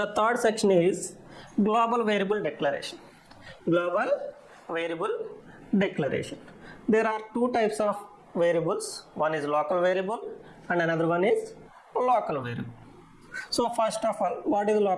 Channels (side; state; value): both; identical; correlation 1.00